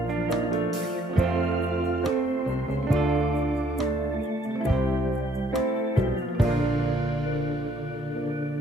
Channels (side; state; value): both; normal; correlation 0.64